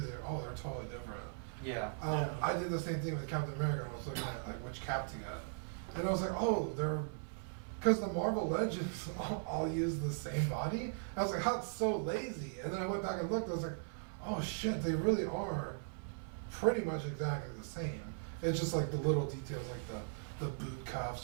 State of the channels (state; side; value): silent; left; 52 dB below the other